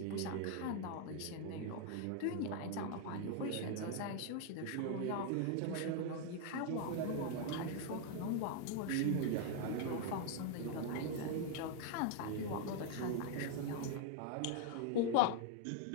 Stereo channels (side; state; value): both; different; correlation 0.00